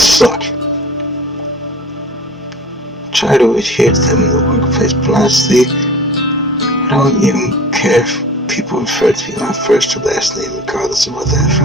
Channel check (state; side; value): normal; both; correlation 0.42